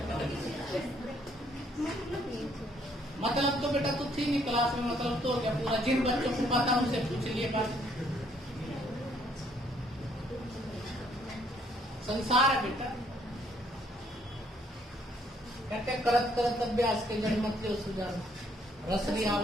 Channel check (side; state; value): both; normal; correlation 0.67